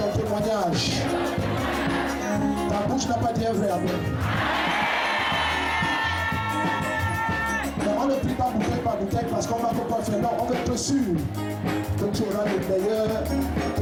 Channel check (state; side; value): identical; both; correlation 1.00